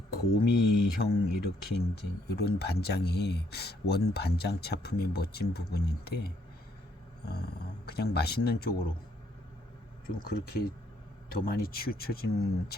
곰이형 이렇게 이제 이런 반장이 원 반장 차품의 멋진 부분인데 그냥 맛있는 쪽으로 좀 그렇게 더 많이 치우쳐진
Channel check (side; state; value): both; normal; correlation 0.70